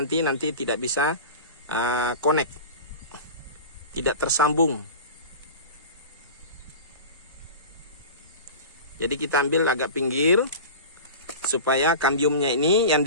tidak bisa connect, tidak tersambung. Jadi kita ambil agak pinggir supaya kambiumnya ini yang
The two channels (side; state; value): both; inverted; correlation -0.33